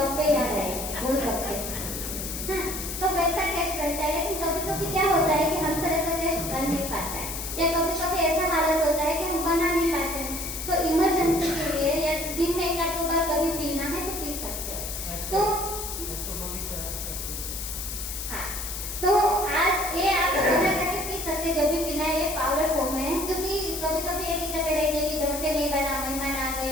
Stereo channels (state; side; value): noise; left; hiss, 6 dB below the sound